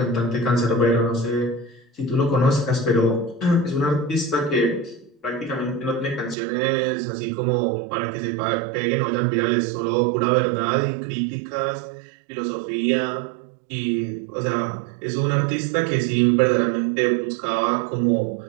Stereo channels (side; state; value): left; drops out; at 6.4 s